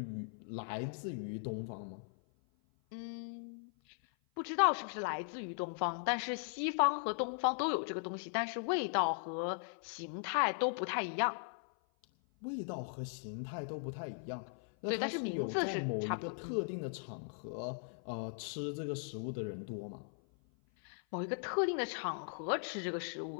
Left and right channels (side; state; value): right; silent; 52 dB below the other